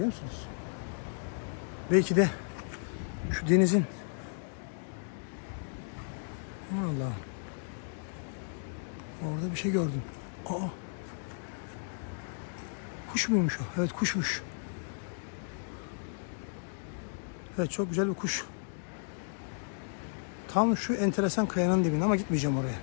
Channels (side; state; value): right; silent; digital silence